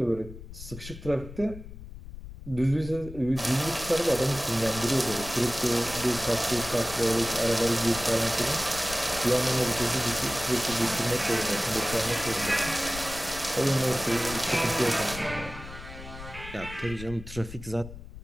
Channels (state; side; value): noise; left; rumble, 13 dB below the sound